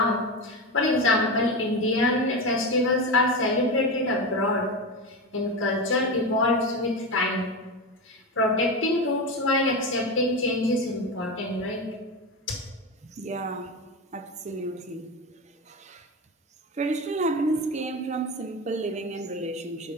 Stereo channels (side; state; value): both; normal; correlation 0.19